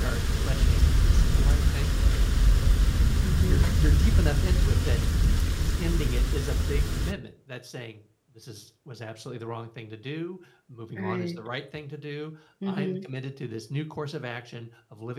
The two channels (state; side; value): identical; both; correlation 1.00